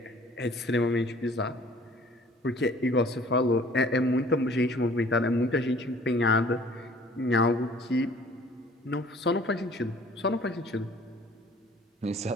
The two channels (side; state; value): both; normal; correlation 0.53